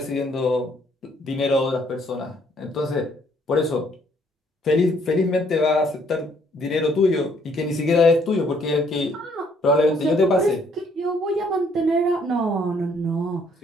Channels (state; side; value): normal; both; correlation 0.66